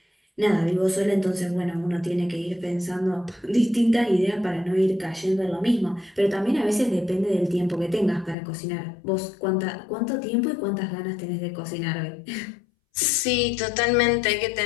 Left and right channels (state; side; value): drops out; right; at 8.3 s